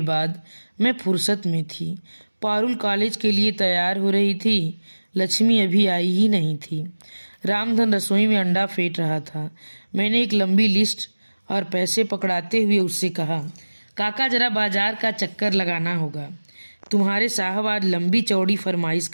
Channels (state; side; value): inverted; both; correlation -1.00